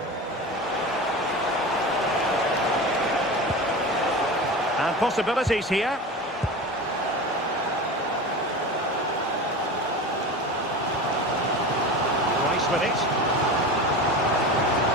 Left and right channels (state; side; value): normal; both; correlation 0.29